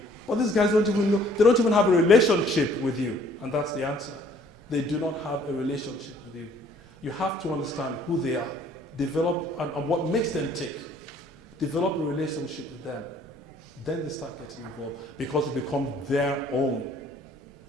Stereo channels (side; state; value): both; normal; correlation 0.59